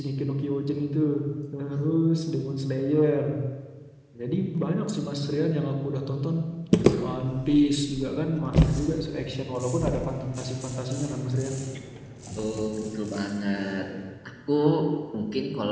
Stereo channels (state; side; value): identical; both; correlation 1.00